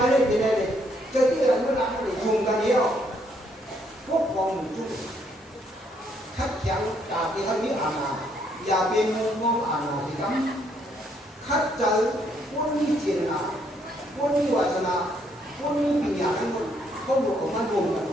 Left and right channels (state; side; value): normal; both; correlation 0.71